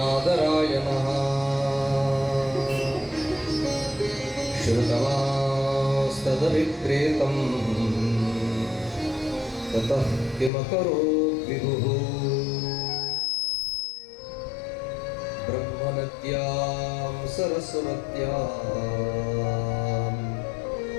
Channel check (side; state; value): right; drops out; at 10.5 s